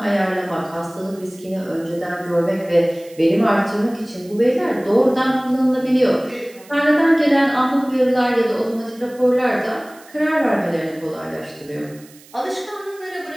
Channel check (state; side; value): noise; right; hiss, 24 dB below the sound